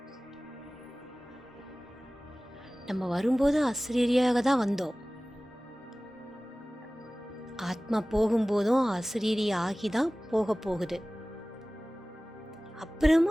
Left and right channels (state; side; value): normal; both; correlation 0.98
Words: நம்ம வரும்போது அஸ்ரீரியாக தான் வந்தோம். ஆத்மா போகும்போதும் அஸ்ரீரி ஆகி தான் போக போகுது.